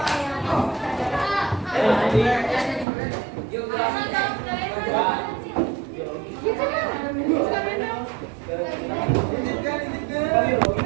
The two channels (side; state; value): left; drops out; at 2.9 s